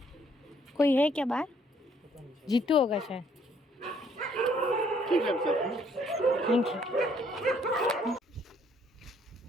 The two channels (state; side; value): normal; both; correlation 0.65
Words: कोई है क्या बाहर? जीतू होगा शायद। ठीक है सर। Thank you.